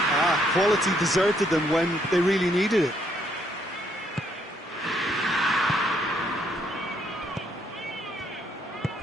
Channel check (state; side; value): normal; both; correlation 0.71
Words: Quality deserted them when they really needed it.